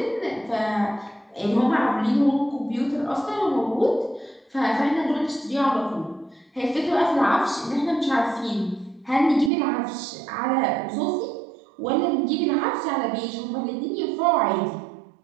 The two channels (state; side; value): drops out; left; at 9.5 s